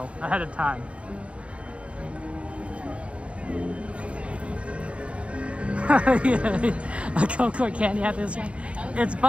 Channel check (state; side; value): late; left; 0.061 ms